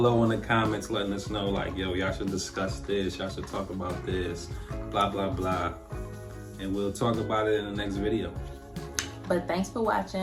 in the comments letting us know, like, yo, y'all should discuss this, y'all should talk about this, blah, blah, blah. And we'll talk about it in the next video. But thanks for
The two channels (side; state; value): both; identical; correlation 1.00